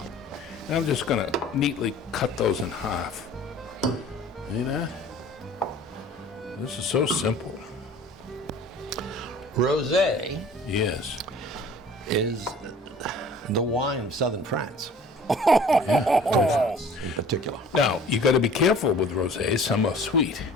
And I'm just gonna neatly cut those in half. See that? This is so simple. Rosé Yes. is the wine of southern France. In particular. Now, you gotta be careful with rosé. Some are sweet.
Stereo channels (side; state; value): both; normal; correlation 0.48